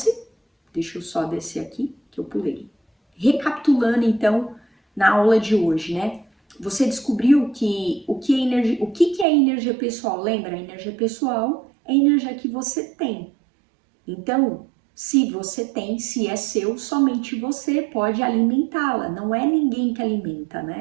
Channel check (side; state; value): left; drops out; at 9.2 s